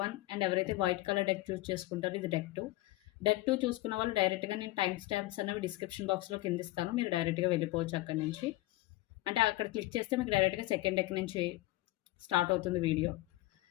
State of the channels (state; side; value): quieter; right; 18.2 dB